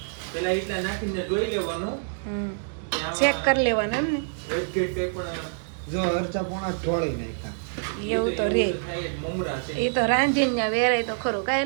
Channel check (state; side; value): silent; left; digital silence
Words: પેલા એટલા નાખીને જોઈ લેવાનું, ચેક કરી લેવાનું એમ ને. જો અરચા પોણા ઢોળી નાખ્યા, એવું તો રે, મમરા છે એ તો રાંધીને ત્યાં વેરાય તો ખરું.